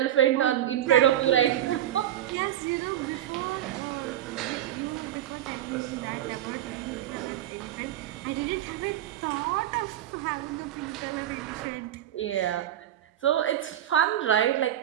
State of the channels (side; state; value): left; quieter; 11.9 dB